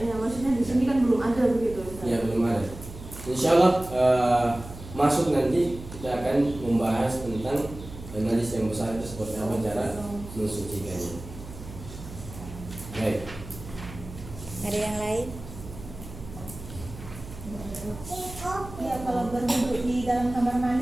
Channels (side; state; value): right; noise; hum, 14 dB below the sound